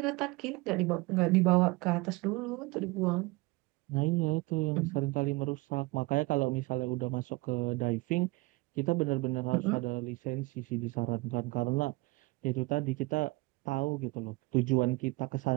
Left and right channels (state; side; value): quieter; left; 23.3 dB